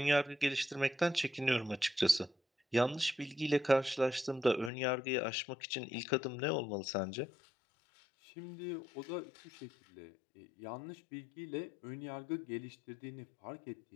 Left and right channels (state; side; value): drops out; right; at 4.7 s